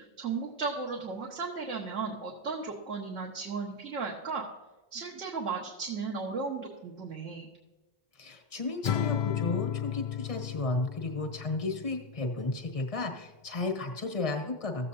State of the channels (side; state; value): right; late; 1.6 ms